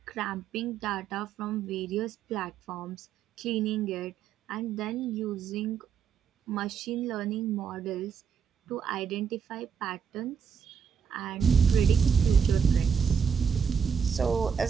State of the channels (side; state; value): left; quieter; 6.9 dB